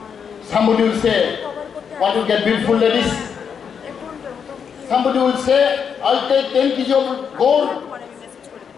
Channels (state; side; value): quieter; right; 7.0 dB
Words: Somebody will say, want to get beautiful ladies? Somebody will say, I'll take 10 kg of gold.